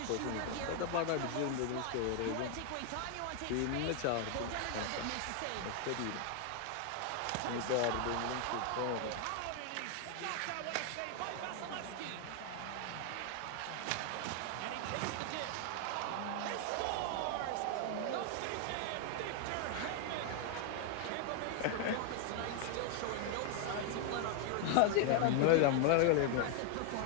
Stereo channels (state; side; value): different; both; correlation 0.00